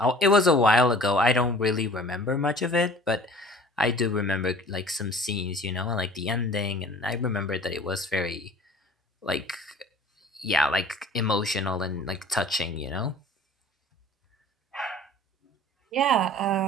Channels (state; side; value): normal; both; correlation 0.46